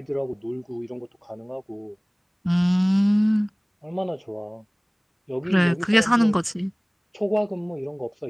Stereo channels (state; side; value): identical; both; correlation 1.00